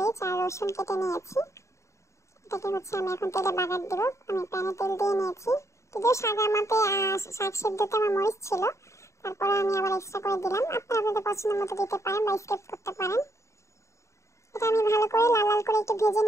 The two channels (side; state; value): right; late; 0.14 ms